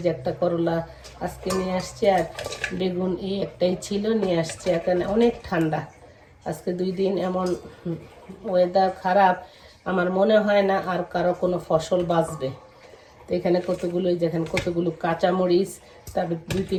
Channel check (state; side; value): identical; both; correlation 1.00